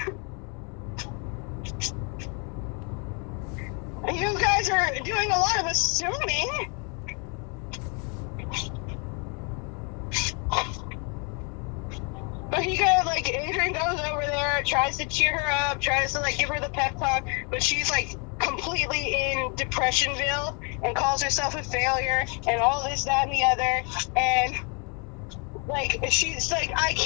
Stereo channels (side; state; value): right; quieter; 35.2 dB